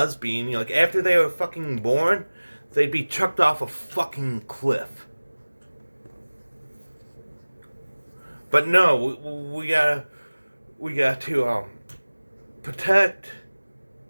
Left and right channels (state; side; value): inverted; both; correlation -1.00